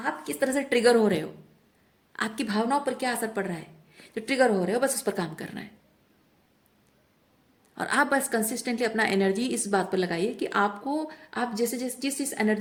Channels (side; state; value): both; identical; correlation 1.00